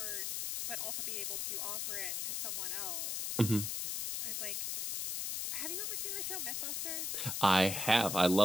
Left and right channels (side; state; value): left; noise; hiss, 2 dB below the sound